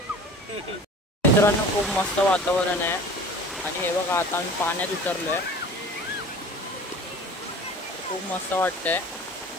मित्रांनो खूप मस्त वातावरण आहे आणि हे बघा आता आम्ही पाण्यात उतरलोय. खूप मस्त वाटतंय.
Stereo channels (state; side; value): normal; both; correlation 0.41